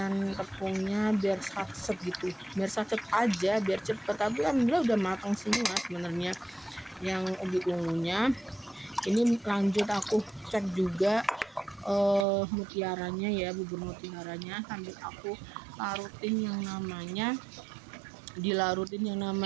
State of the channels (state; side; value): drops out; left; at 12.2 s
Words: tepungnya biar satset gitu, biar satset aja biar cepet. Tapi alhamdulillah udah matang semua sebenarnya yang ubi ungunya. Ini lanjut aku cek juga mutiaranya ya, bubur mutiaranya, sambil aku dilarutin yang